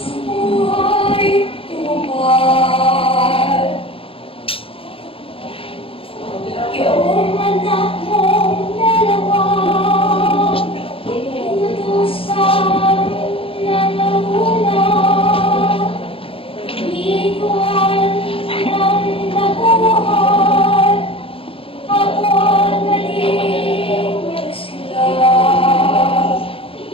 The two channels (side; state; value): right; late; 0.27 ms